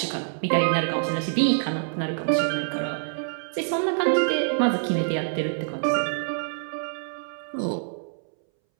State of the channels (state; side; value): silent; left; 61 dB below the other